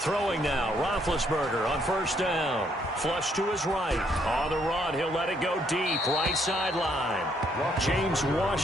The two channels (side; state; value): both; normal; correlation 0.70